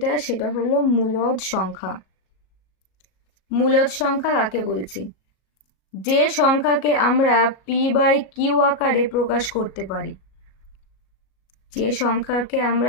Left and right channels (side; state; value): right; late; 37 ms